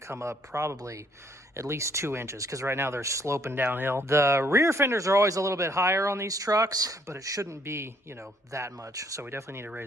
up probably at least 2 inches, because right now they're sloping downhill. The rear fenders are always a little bit higher on these trucks, but it shouldn't be, you know, that much. So we definitely need to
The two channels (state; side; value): normal; both; correlation 0.66